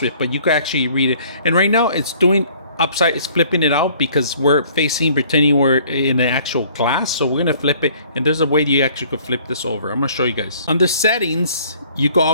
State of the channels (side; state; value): both; inverted; correlation -0.56